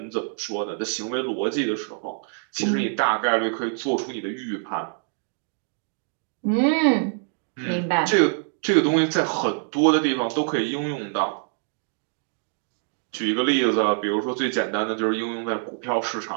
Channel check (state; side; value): silent; left; 62 dB below the other